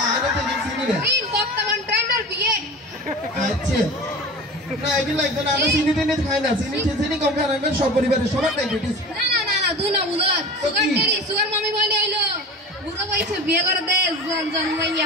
আরে তো চিনি রে তিন বর্তমান ট্রেন্ডার বিয়ে আচ্ছা না এগুলো লাগবে না আমরা চিনি টেনে খাই না চিনি কম খাই রাখবেন সব পরিবারের সবার ডায়াবেটিস না দুই না বুঝার সুগার মামি বলে আইলো বুড়ো বয়সে বিয়ে করে দে জন্মাইয়া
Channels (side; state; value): both; normal; correlation 0.34